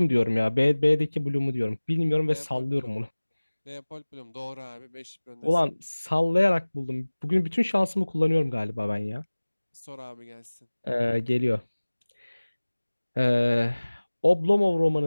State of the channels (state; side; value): inverted; both; correlation -1.00